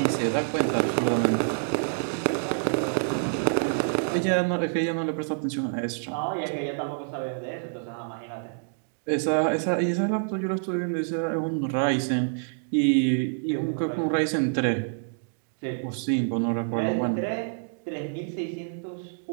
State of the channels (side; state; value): left; silent; digital silence